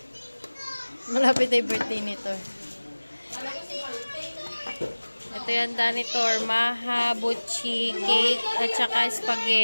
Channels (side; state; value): both; inverted; correlation -1.00